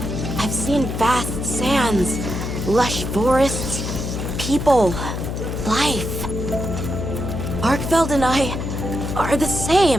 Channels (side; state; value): left; noise; hum, 4 dB below the sound